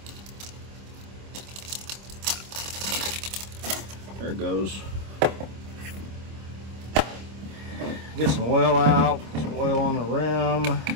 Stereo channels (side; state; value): left; late; 26 ms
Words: There it goes. Get some oil out, some oil on the rim, a